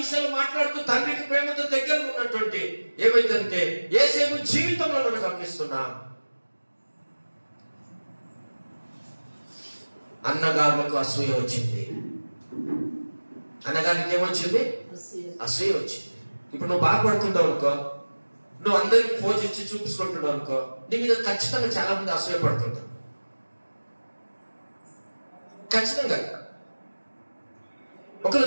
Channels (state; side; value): inverted; both; correlation -1.00